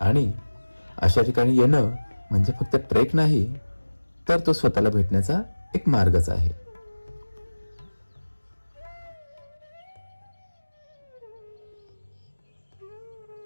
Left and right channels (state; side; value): inverted; both; correlation -1.00